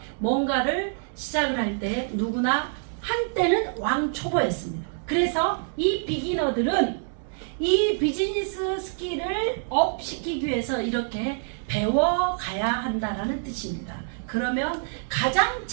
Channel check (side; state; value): left; silent; digital silence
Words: 때 누구나 한때는 왕초보였습니다. 그래서 이 비기너들은 이 비즈니스 스킬을 업시키기 위해서 이렇게 배워가야 한다라는 뜻입니다. 그러면 가장